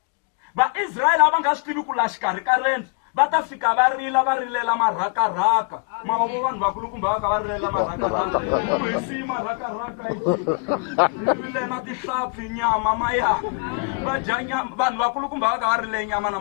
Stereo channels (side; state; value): right; quieter; 34.5 dB